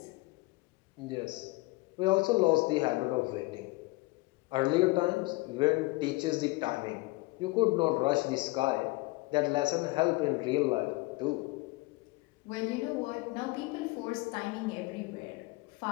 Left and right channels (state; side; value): quieter; right; 22.6 dB